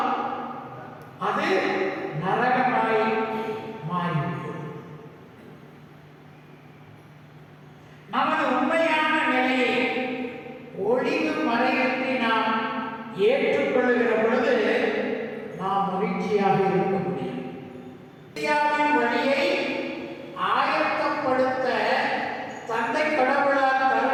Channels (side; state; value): both; identical; correlation 1.00